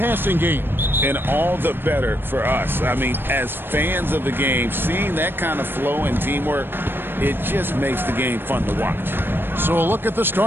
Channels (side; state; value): left; late; 0.099 ms